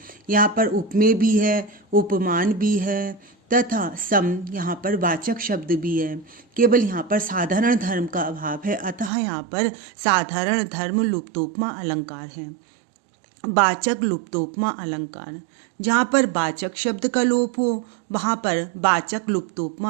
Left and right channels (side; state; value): left; drops out; at 9.1 s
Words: यहाँ पर उपमेय भी है, उपमान भी है तथा सम यहाँ पर वाचक शब्द भी है, केवल यहाँ पर साधारण धर्म का अभाव है, अतः यहाँ पर साधारण धर्म लुप्तोपमा अलंकार है। वाचक लुप्तोपमा अलंकार। जहाँ पर वाचक शब्द का लोप हो वहाँ पर वाचक